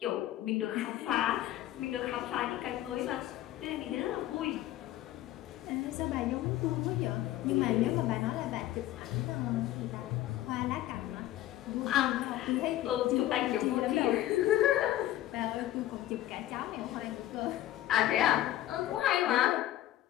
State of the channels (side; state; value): right; quieter; 14.1 dB